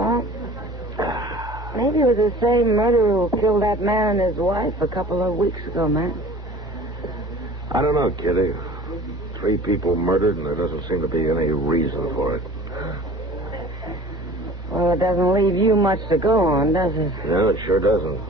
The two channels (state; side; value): normal; both; correlation 0.44